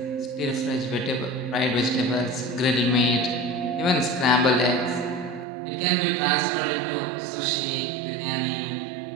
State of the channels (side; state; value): left; drops out; at 5.5 s